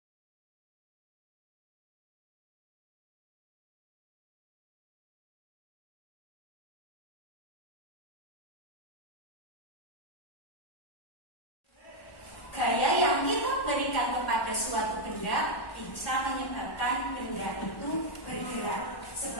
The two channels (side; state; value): right; late; 1.1 ms